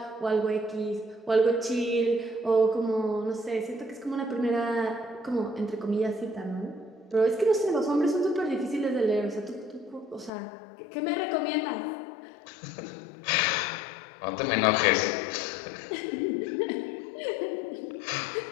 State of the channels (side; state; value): right; drops out; at 10.3 s